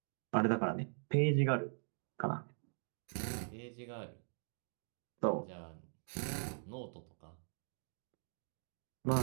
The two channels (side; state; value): left; silent; digital silence